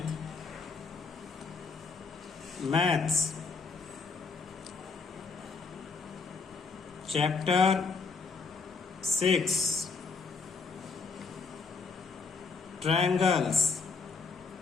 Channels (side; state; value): right; quieter; 4.7 dB